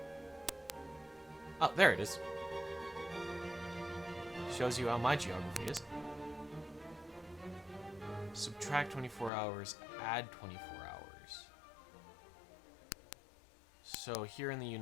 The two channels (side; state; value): right; drops out; at 9.3 s